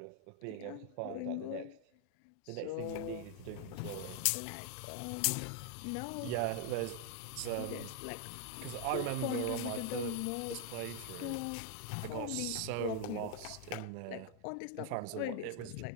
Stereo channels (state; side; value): different; both; correlation 0.00